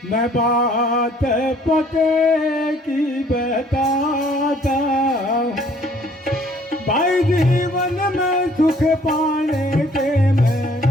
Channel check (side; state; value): both; normal; correlation 0.59